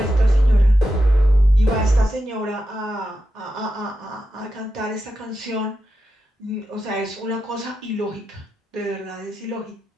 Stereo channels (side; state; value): both; normal; correlation 0.89